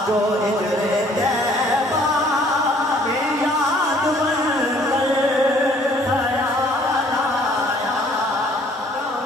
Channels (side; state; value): both; normal; correlation 0.58